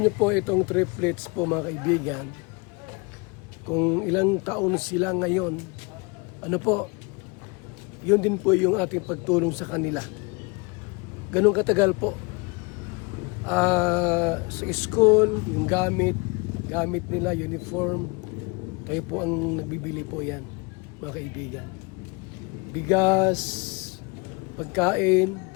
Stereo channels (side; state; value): right; quieter; 29.7 dB